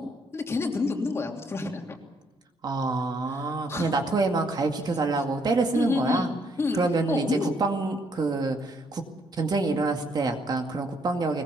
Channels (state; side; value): normal; both; correlation 0.70